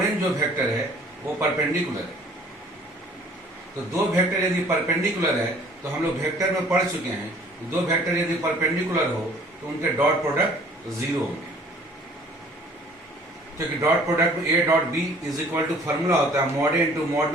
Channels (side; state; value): both; normal; correlation 0.54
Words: जो वेक्टर है वो परपेंडिकुलर है। तो दो वेक्टर यदि परपेंडिकुलर है तो हम लोग वेक्टर में पढ़ चुके हैं, दो वेक्टर यदि परपेंडिकुलर हो तो उनके डॉट प्रोडक्ट 0 होंगे, क्योंकि डॉट प्रोडक्ट में A dot B is equal to formula होता है mod A into mod